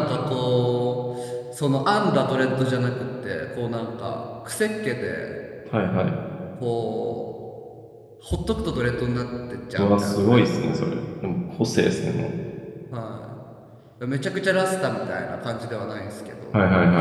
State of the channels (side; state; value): both; identical; correlation 1.00